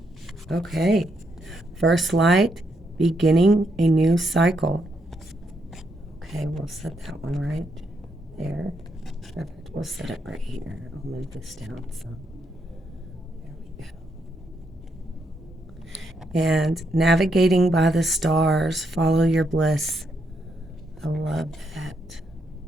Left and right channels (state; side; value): normal; both; correlation 0.78